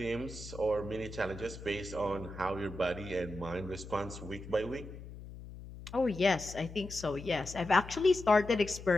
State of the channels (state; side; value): noise; left; hum, 13 dB below the sound